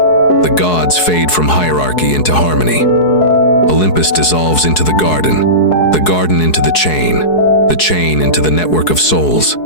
gods fade from hierarchy into harmony. Olympus dissolves into the garden into the chain into the network of souls.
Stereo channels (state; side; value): late; right; 4.7 ms